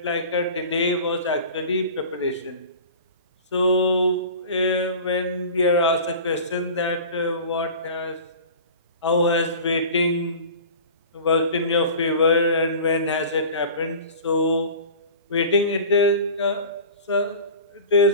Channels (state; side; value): inverted; both; correlation -0.38